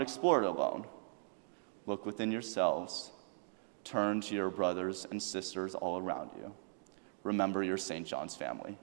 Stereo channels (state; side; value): silent; left; digital silence